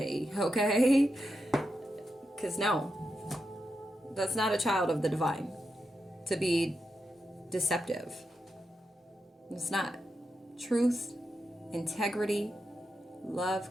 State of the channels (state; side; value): normal; both; correlation 0.87